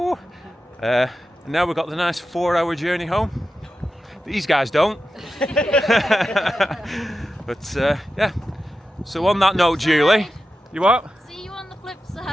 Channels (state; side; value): normal; both; correlation 0.91